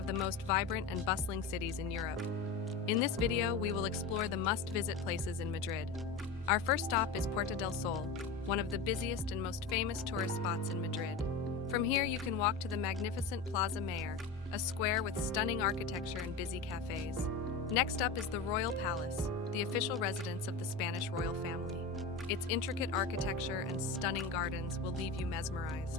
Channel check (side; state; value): right; quieter; 4.4 dB